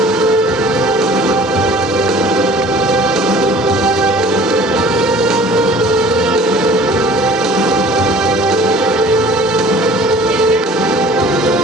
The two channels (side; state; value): both; normal; correlation 0.48